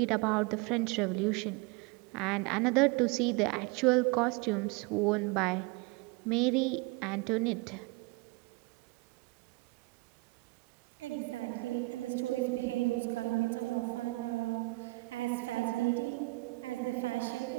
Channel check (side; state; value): left; quieter; 24.4 dB